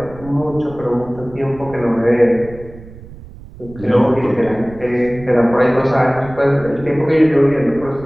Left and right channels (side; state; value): right; noise; rumble, 18 dB below the sound